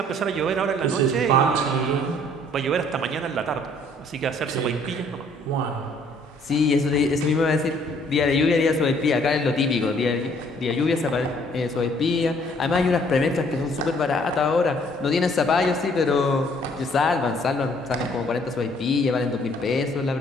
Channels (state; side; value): normal; both; correlation 0.61